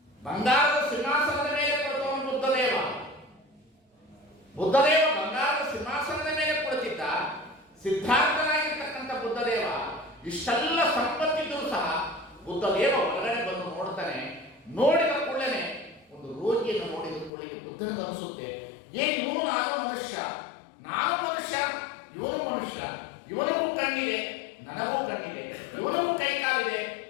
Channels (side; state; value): right; drops out; at 17.3 s